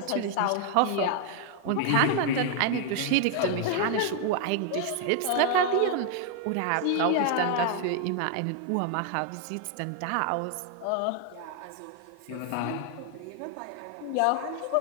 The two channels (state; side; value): different; both; correlation 0.00